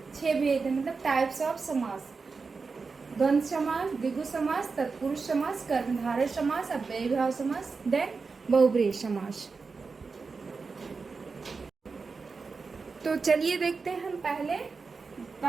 6 भेद हैं, मतलब टाइप्स ऑफ समास। द्वंद्व समास, द्विगु समास, तत्पुरुष समास, कर्मधारय समास, अव्ययीभाव समास, देन बहुब्रीहि समास। तो चलिए देखते हैं हम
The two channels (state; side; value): quieter; left; 4.6 dB